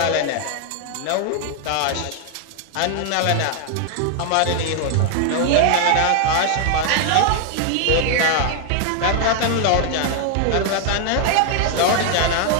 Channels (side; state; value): both; different; correlation 0.00